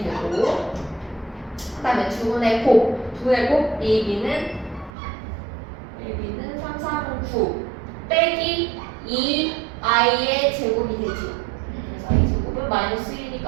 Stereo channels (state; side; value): drops out; left; at 4.9 s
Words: 되고 그 다음에 두 분의 곱 AB는 3, 3, 9 빼기 2i의 제곱이 되지. 그래서 i 제곱은 마이너스